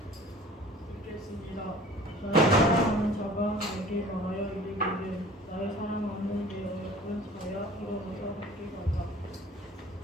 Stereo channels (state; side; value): normal; both; correlation 0.46